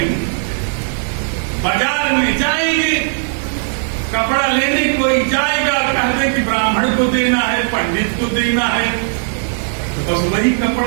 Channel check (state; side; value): silent; left; digital silence